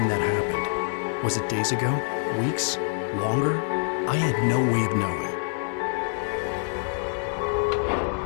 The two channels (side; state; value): right; silent; digital silence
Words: that happened. Was it days ago? Weeks? Longer? I had no way of knowing.